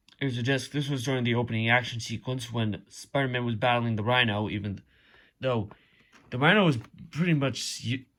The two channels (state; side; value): identical; both; correlation 1.00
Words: Here's the disc. This was during the opening action sequence when Spider-Man was battling the Rhino, even though the Rhino was pretty